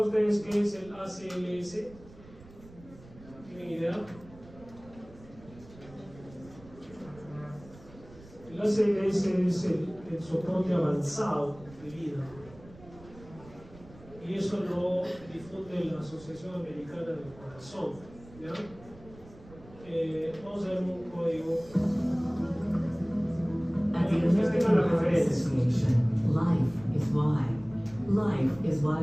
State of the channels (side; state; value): right; noise; rumble, 21 dB below the sound